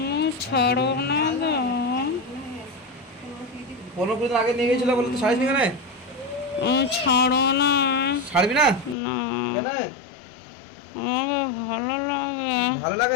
ছাড়ব না তো। 15 দিন আগে নিয়ে গেছিল বলে তুই ছাড়িস নি কেন? আমি ছাড়ব না। ছাড়বি না? না, কেন? আমাকে ভালো লাগে। ভালো লাগে?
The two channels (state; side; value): drops out; right; at 9.0 s